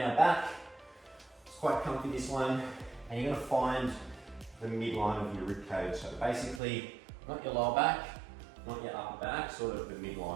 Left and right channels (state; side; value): drops out; left; at 6.6 s